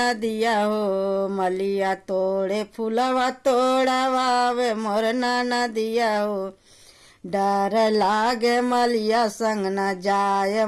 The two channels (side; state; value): both; identical; correlation 1.00